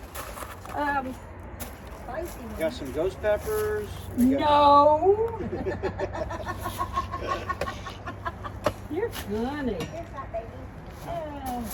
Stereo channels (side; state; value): both; identical; correlation 1.00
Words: kinds. Got some ghost peppers. No. You're funny. Here's that baby. I